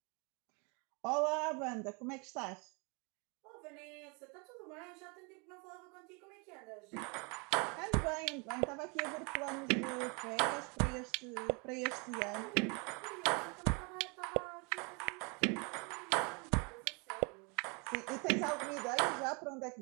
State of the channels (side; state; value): left; quieter; 31.9 dB